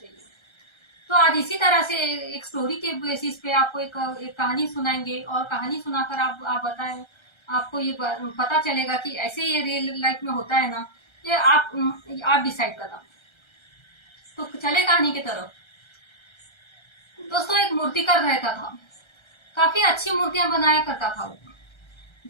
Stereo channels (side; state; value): right; late; 1.3 ms